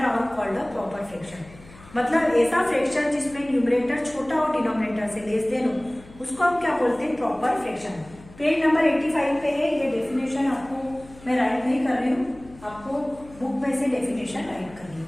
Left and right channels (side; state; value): left; noise; hum, 21 dB below the sound